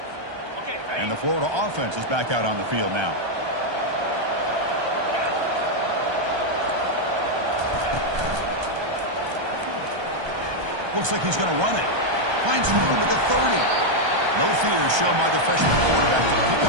And the Florida offense is back out on the field now. Looks like he's going to run it. Finds room at the 30. No fear shown by the freshman quarterback to pick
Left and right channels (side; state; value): left; late; 1.3 ms